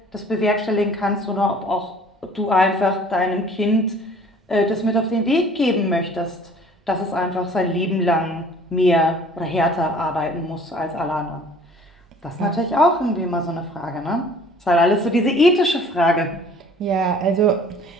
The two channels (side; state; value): both; normal; correlation 0.52